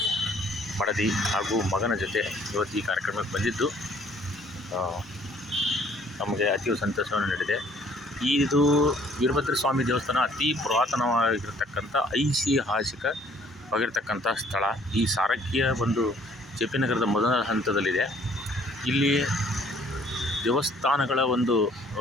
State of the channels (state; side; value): normal; both; correlation 0.59